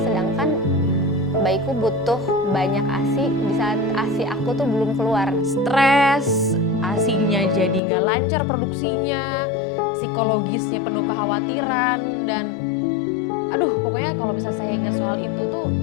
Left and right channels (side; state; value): right; drops out; at 7.8 s